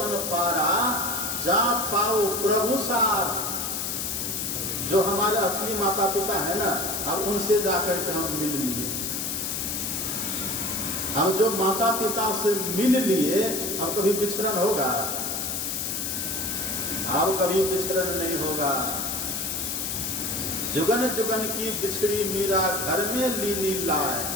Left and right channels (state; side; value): noise; left; hiss, 2 dB below the sound